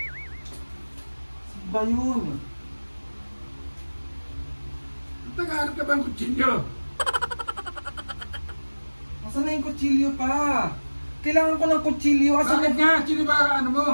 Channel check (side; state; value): both; inverted; correlation -1.00